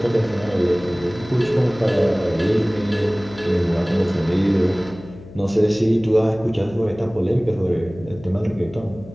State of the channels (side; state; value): left; noise; hum, 18 dB below the sound